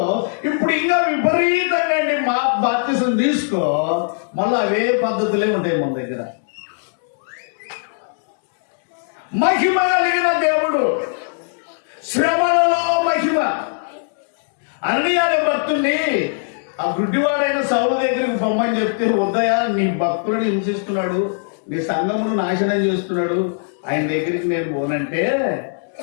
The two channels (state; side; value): silent; right; 66 dB below the other